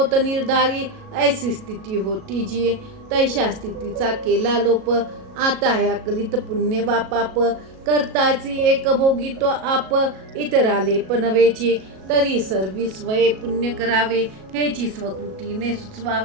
निर्धारी ऐसी स्थिती होती जी. तैशा स्थितीचा केला लोप. आता ह्या कलित पुण्य वा पाप करताची एक भोगी तो आप. इतराले पनवेची तरी सर्वी स्वये पुण्य करावे. हेची स्वकृतीने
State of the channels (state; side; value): late; left; 37 ms